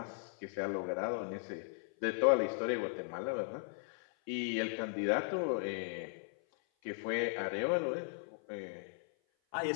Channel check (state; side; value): silent; right; 53 dB below the other